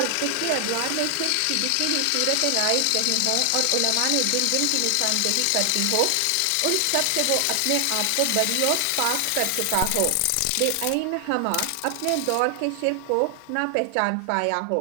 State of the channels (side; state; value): both; different; correlation 0.00